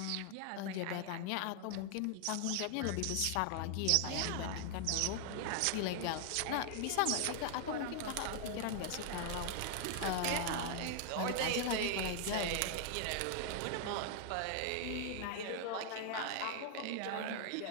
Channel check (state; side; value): different; both; correlation 0.00